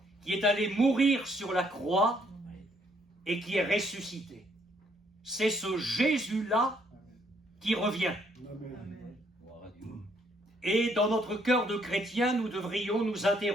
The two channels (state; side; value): normal; both; correlation 0.69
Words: qui est allé mourir sur la croix et qui est ressuscité. C'est ce Jésus-là qui revient. Et dans notre cœur de chrétien, nous devrions nous